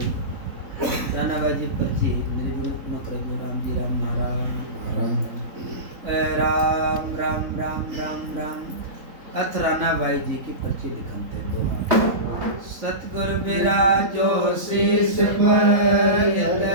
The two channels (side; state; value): left; late; 3.6 ms